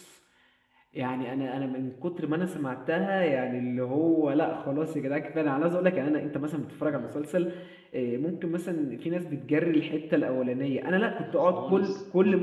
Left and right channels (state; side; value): identical; both; correlation 1.00